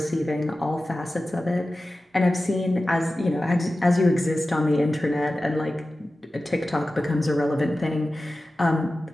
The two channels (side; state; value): both; normal; correlation 0.95